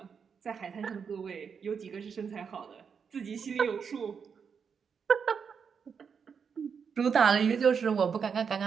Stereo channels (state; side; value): quieter; left; 6.4 dB